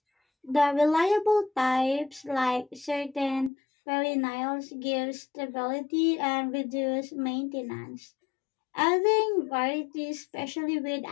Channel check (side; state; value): right; drops out; at 3.5 s